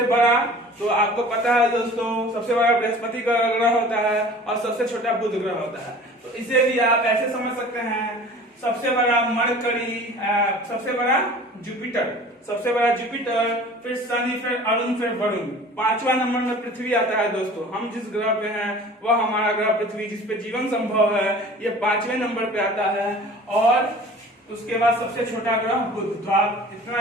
बड़ा, तो आपको पता है दोस्तों सबसे बड़ा बृहस्पति का ग्रह होता है और सबसे छोटा बुध ग्रह होता है। तो इसे भी आप ऐसे समझ सकते हैं, सबसे बड़ा मरकरी, सबसे बड़ा जुपिटर, सबसे बड़ा जुपिटर, फिर शनि, फिर अरुण, फिर वरुण। 5वां नंबर में पृथ्वी आता है दोस्तों। हम जिस ग्रह पे हैं वह हमारा ग्रह पृथ्वी, जिसपे जीवन संभव है, ये 5वें नंबर पे आता है। और उसके बाद सबसे छोटा ग्रह बुध। तो आप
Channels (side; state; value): both; normal; correlation 0.44